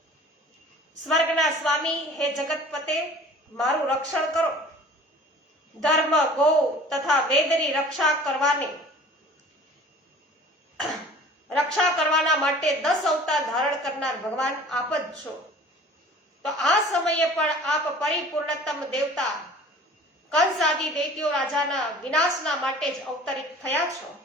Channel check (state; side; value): normal; both; correlation 0.46